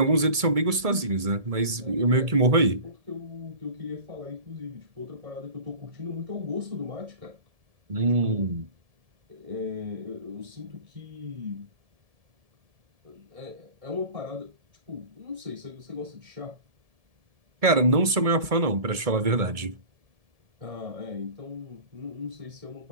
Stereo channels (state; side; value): late; left; 1.7 ms